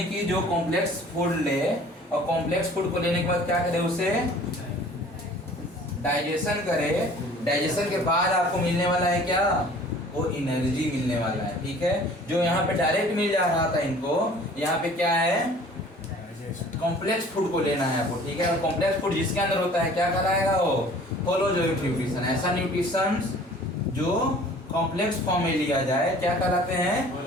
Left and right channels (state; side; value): normal; both; correlation 0.49